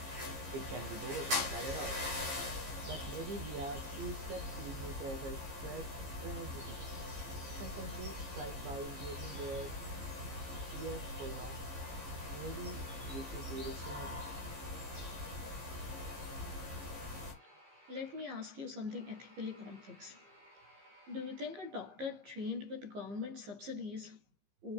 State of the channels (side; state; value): left; late; 15 ms